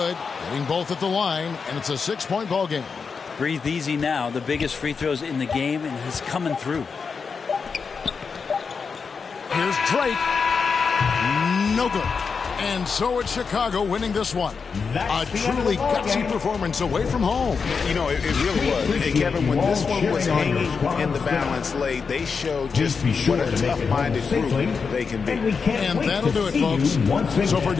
hitting both at the line, and it's a 6-point ball game. Breathe easy now. The biggest free throws in the game, and he's coming through. Here's Drake. No good. And so it's Chicago winning this one. A truly gutsy performance away from home. You know, it really was. And Kevin, when this one was hanging in the balance late, they showed just what a tough-minded group they can be. And that'll do it, folks. So for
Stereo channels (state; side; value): quieter; right; 5.4 dB